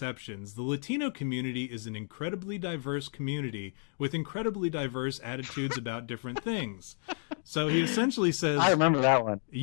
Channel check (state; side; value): silent; right; 56 dB below the other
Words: the Latino community is an incredibly diverse community with incredibly diverse attitudes about different things. So he essentially says, I remember that one.